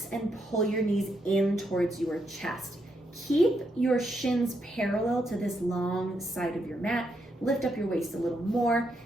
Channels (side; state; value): both; normal; correlation 0.79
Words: and pull your knees in towards your chest. Keep your shins parallel to this long side of your mat. Lift up your waist a little more.